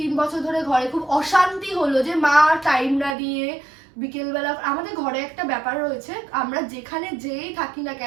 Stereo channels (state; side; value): drops out; left; at 3.2 s